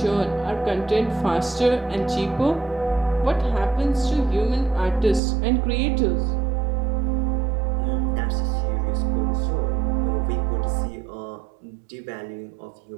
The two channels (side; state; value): left; drops out; at 5.2 s